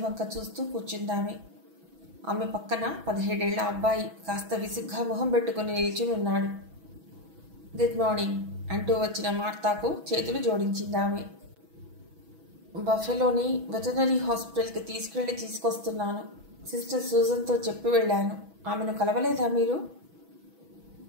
వంక చూస్తూ కూర్చుందామె. ఆమె పక్కన 17 ఏళ్ల అబ్బాయి కాస్త విసుగ్గా మొహం పెట్టుకుని నిల్చుని ఉన్నాడు. గుడ్ మార్నింగ్ అంటూ వచ్చిన మార్తాకు చేతులు జోడించిందామె. బఫెలోని వెటర్నరీ హాస్పిటల్కి తీసుకొస్తున్నాను. సిస్టర్ సూజన్తో చెప్పి వెళ్ళాను. ఆమెను కలవలేదా మీరు?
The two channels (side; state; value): left; late; 6.1 ms